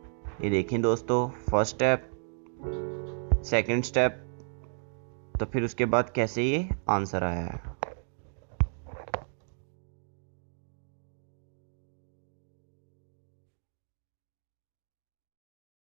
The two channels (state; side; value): silent; left; digital silence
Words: ये देखें दोस्तों, फर्स्ट स्टेप, सेकंड स्टेप, तो फिर उसके बाद कैसे ये आंसर आया है।